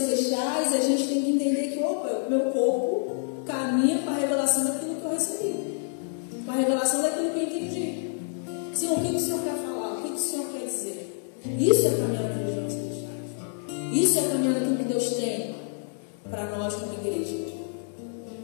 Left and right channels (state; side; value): silent; right; digital silence